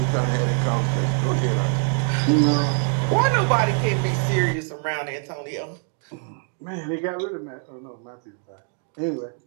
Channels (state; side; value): quieter; left; 39.5 dB